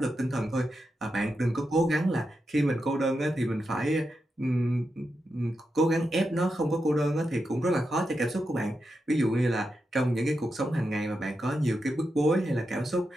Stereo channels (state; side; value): normal; both; correlation 0.87